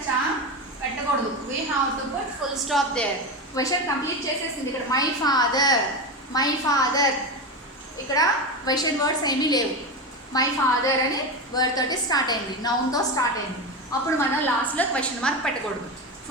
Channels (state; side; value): normal; both; correlation 0.19